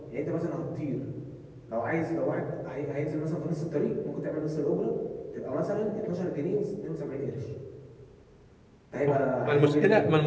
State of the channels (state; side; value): identical; both; correlation 1.00